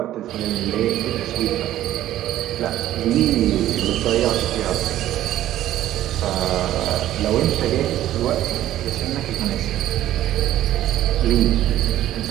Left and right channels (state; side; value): quieter; left; 13.3 dB